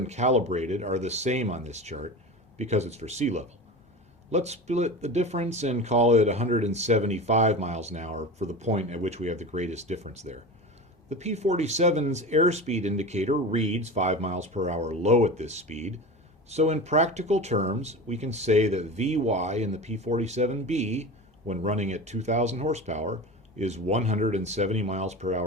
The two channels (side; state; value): both; normal; correlation 0.30